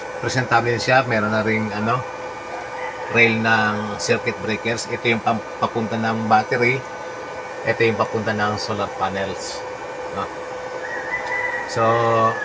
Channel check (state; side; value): identical; both; correlation 1.00